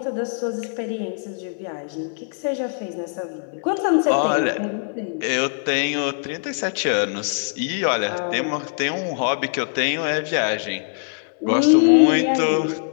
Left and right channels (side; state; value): right; silent; digital silence